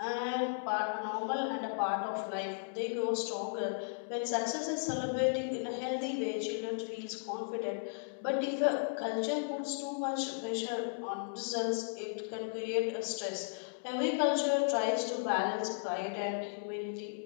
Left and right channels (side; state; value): right; silent; digital silence